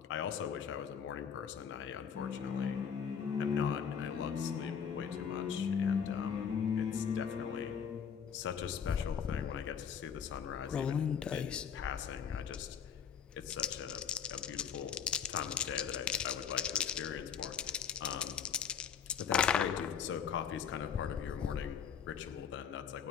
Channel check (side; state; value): right; quieter; 7.4 dB